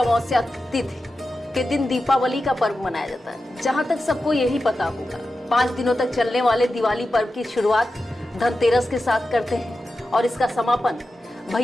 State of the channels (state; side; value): normal; both; correlation 0.91